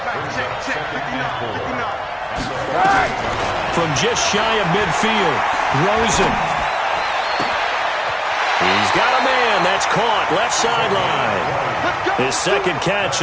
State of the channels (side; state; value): both; identical; correlation 1.00